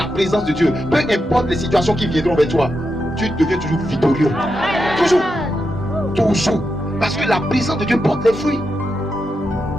présence de Dieu, peu importe les situations qui viendront vers toi, tu deviens toujours victorieux. Toujours. Toujours. Parce que la présence de Dieu porte les fruits.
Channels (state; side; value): normal; both; correlation 0.86